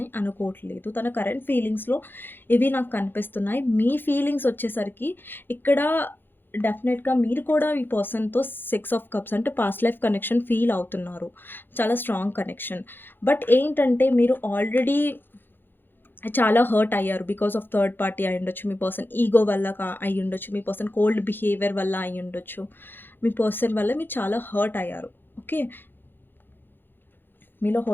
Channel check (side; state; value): right; late; 0.098 ms